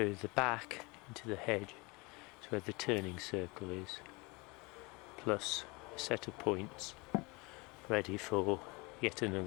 the back into the hedge to where the turning circle is, plus a set of points ready for yet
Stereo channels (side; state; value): right; quieter; 26.7 dB